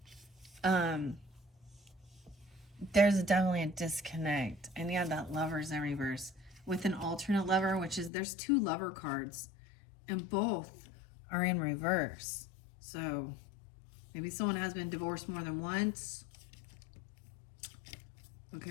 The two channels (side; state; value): right; drops out; at 8.1 s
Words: There's definitely a disconnect. And yeah, that lover's in reverse. With an alternate lover, which is, there's 2 lover cards, and both are in reverse. So maybe someone has been divorced more than once.